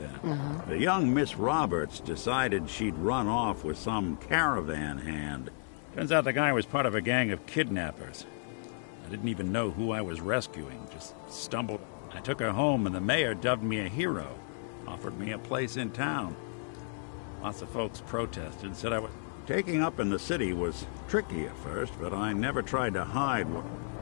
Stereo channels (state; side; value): silent; right; digital silence